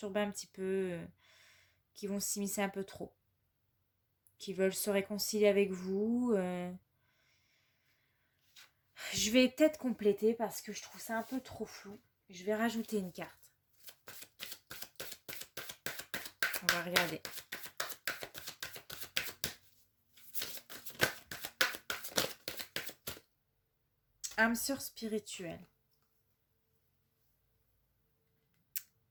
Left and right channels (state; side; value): identical; both; correlation 1.00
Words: un petit peu, qui vont s'immiscer un peu trop, qui veulent se réconcilier avec vous. Je vais peut-être compléter parce que je trouve ça un peu trop flou. Je vais rajouter une carte. On va regarder. Âme sœur spirituelle.